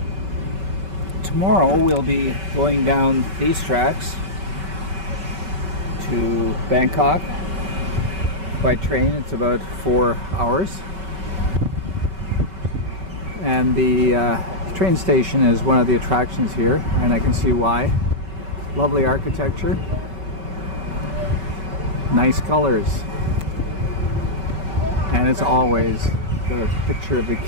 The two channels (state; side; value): late; left; 5.2 ms